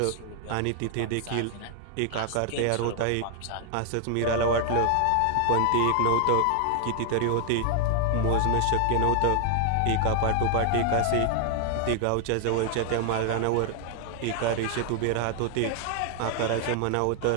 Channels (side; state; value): both; different; correlation 0.00